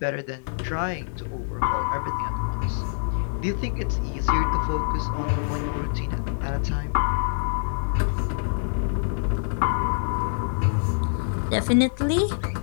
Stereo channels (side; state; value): right; silent; 61 dB below the other